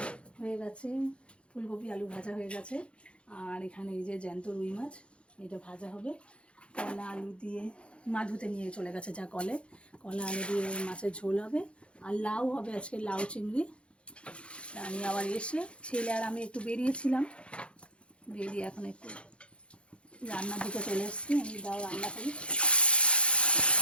হয়ে গেছে, ফুলকপি আলু ভাজা হয়ে গেছে, আর এখানে এই যে জ্যান্ত রুই মাছ, এটা ভাজা হবে। কলা আলু দিয়ে মা ধুতে নিয়ে চলে গেছে যা কলে, কলা আলু দিয়ে মাছের ঝোল হবে, আর লাউ হবে আজকে, লাউ চিংড়ি। আমি আবার এসে ছেলে আর আমি একটু বেরিয়েছিলাম, বেরিয়ে এখন একটু রান্নার দিকে চলে এসেছি। আমি দাও রান্না করি,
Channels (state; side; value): late; right; 0.059 ms